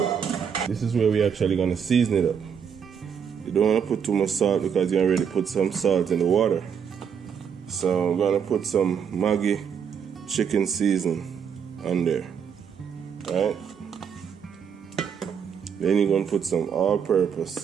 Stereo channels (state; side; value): quieter; left; 7.3 dB